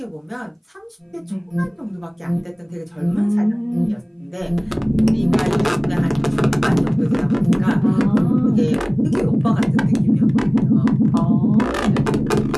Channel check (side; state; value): both; identical; correlation 1.00